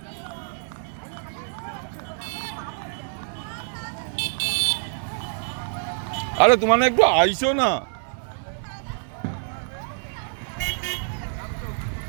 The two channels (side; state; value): left; silent; 58 dB below the other